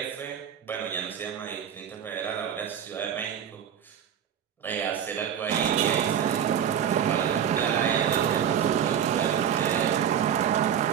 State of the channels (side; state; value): left; quieter; 8.9 dB